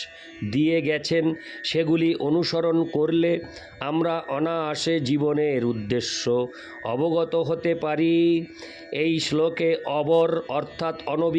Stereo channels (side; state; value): both; identical; correlation 1.00